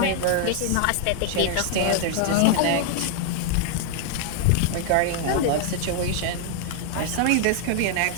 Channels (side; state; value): both; different; correlation 0.00